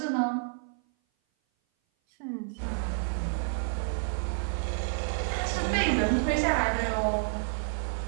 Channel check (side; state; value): left; silent; 56 dB below the other